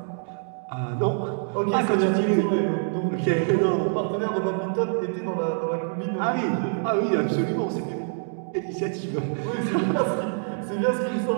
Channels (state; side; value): silent; left; 61 dB below the other